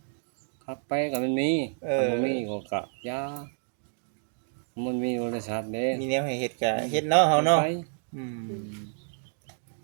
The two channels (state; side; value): silent; left; 59 dB below the other